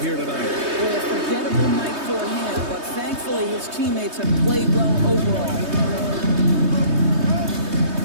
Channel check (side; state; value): left; late; 3.2 ms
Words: here tonight. Well, a forgettable night for him, but thankfully his teammates have played well overall.